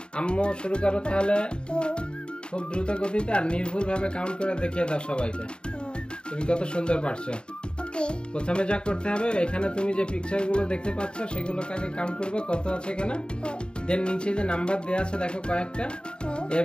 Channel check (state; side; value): late; right; 0.051 ms